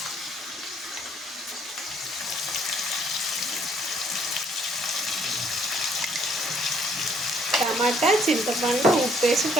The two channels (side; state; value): both; normal; correlation 0.65